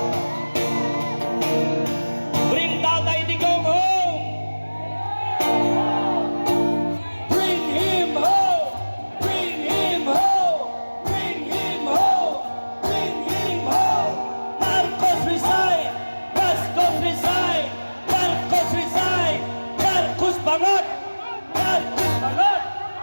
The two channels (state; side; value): inverted; both; correlation -1.00